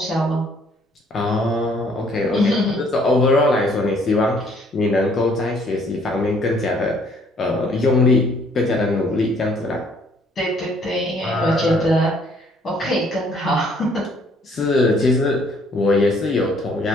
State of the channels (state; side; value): normal; both; correlation 0.63